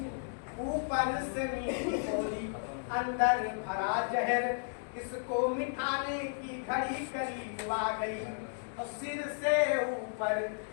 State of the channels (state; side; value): silent; right; digital silence